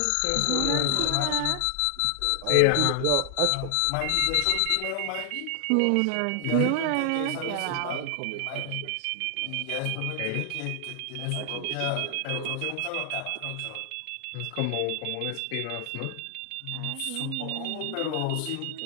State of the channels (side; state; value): both; different; correlation 0.00